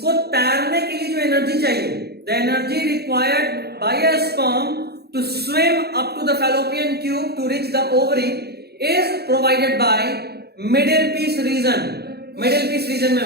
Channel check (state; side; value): late; left; 0.47 ms